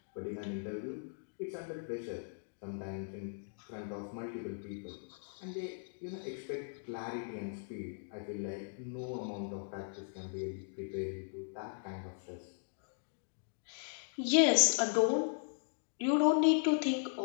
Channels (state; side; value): silent; right; digital silence